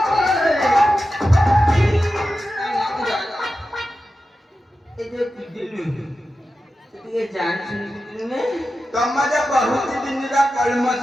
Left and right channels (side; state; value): both; normal; correlation 0.92